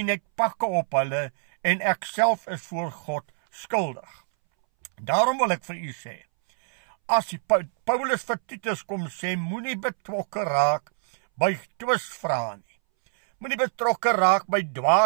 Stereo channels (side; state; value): left; silent; 62 dB below the other